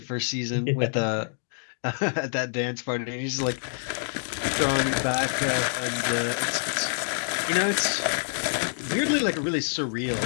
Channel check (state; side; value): silent; right; digital silence